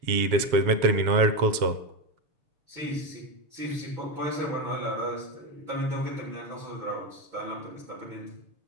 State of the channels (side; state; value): left; late; 7.3 ms